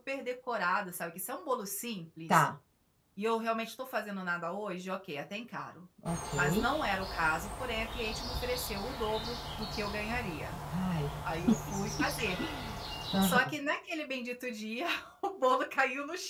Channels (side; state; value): both; identical; correlation 1.00